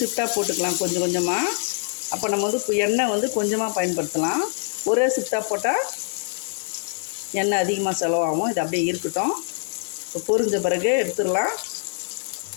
போட்டுக்கலாம் கொஞ்சம் கொஞ்சமாக. அப்போ நம்ம எண்ணெய் கொஞ்சமாக பயன்படுத்தலாம். ஒரே ஷிஃப்டாக போட்டால் எண்ணெய் அதிகமாக செலவாகும். இது அப்படியே இருக்கட்டும். இப்போ பொரிஞ்ச பிறகு எடுத்துடலாம்.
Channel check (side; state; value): right; silent; digital silence